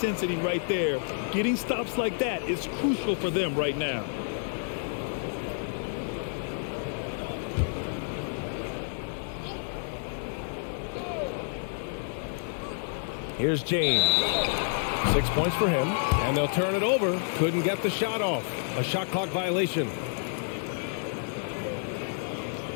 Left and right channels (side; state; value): right; silent; digital silence